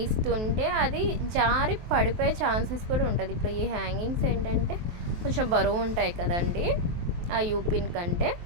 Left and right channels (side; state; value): left; late; 23 ms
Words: అది జారి పడిపోయే ఛాన్సెస్ కూడా ఉంటుంది. ఇప్పుడు ఈ హ్యాంగింగ్స్ ఏంటంటే కొంచెం బరువు ఉంటాయి కదండి ఆ యూపిన్ కంటే,